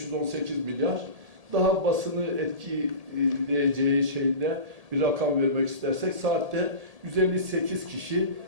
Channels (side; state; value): left; late; 1.8 ms